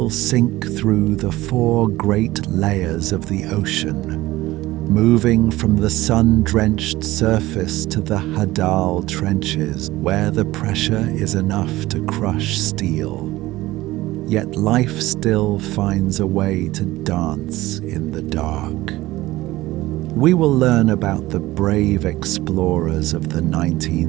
sink through the 4 great layers of the ocean, moving from the sun-drenched surface to the Hadal trenches, where the pressure is enough to crush steel. Yet life still finds a way to dance in the dark. We will learn about the brave explorers of the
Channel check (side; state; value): left; quieter; 17.7 dB